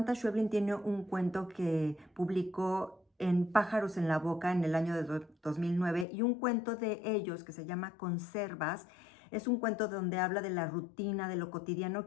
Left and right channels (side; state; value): right; drops out; at 6.1 s